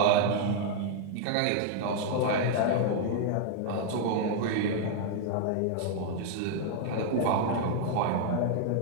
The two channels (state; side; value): different; both; correlation 0.00